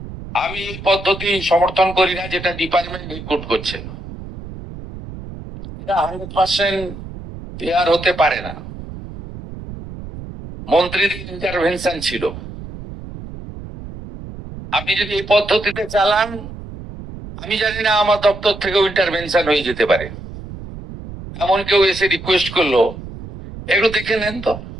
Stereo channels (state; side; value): noise; right; rumble, 12 dB below the sound